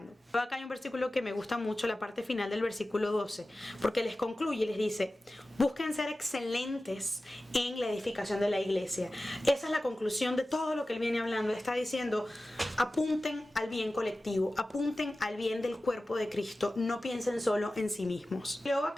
Acá hay un versículo que me gusta mucho, la parte final del versículo 12, porque les concluye y les dice, busquen ser excelentes en la edificación de la iglesia. Esa es la conclusión de todo lo que él viene hablando. Está diciendo, apunten al bien colectivo, apunten al bien del cuerpo de Cristo, no piensen solo en sí mismos. Luego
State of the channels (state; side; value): normal; both; correlation 0.95